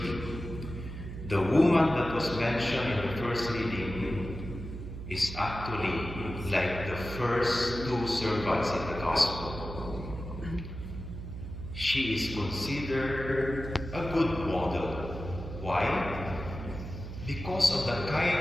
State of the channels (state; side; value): noise; right; hum, 9 dB below the sound